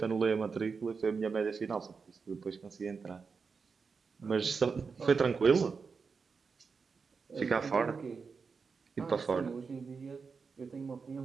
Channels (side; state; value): left; quieter; 5.2 dB